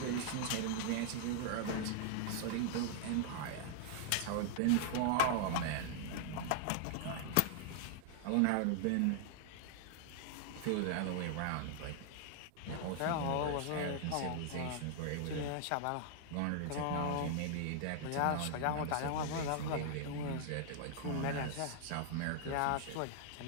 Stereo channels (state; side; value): different; both; correlation -0.01